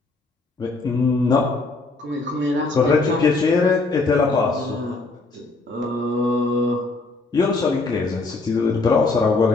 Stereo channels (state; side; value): quieter; right; 3.6 dB